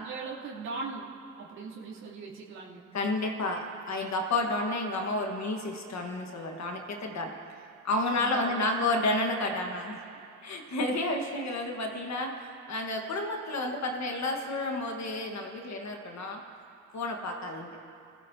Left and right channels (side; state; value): both; normal; correlation 0.03